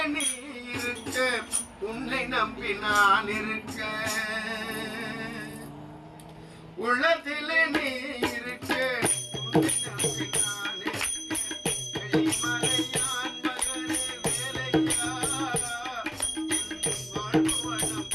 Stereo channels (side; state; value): both; identical; correlation 1.00